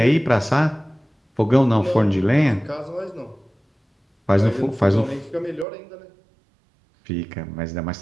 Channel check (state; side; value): drops out; left; at 5.7 s